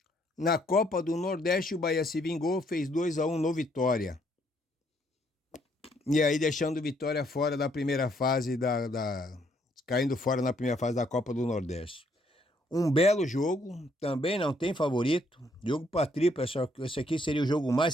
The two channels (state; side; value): normal; both; correlation 0.69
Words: Na Copa do Nordeste, o Bahia se vingou, fez 2-1 no Vitória. E aí deixando o Vitória fora da primeira fase, caindo fora na primeira fase da Copa do Nordeste. Um belo jogo, também não tem favorito. Jogo para triplo, esse aqui seria o jogo